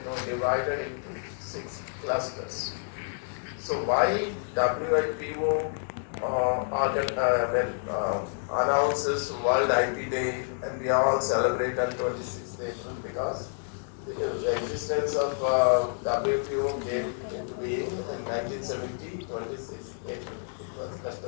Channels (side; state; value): right; silent; digital silence